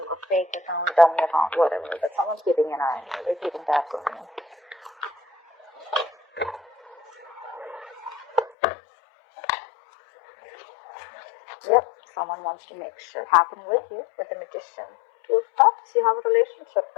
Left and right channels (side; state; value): right; drops out; at 8.6 s